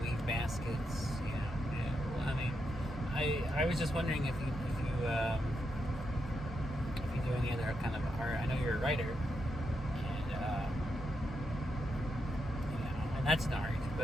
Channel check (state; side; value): normal; both; correlation 0.83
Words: baskets? Well, I mean, I was just wondering if you do any other kind of art. I know you're a writer, and that's an art.